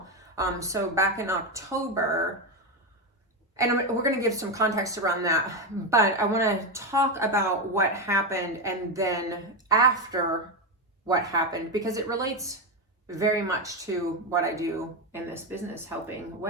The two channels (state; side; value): normal; both; correlation 0.11